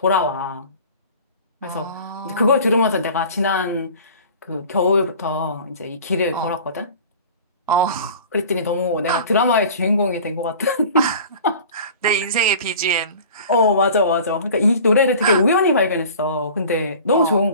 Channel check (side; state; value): both; inverted; correlation -0.42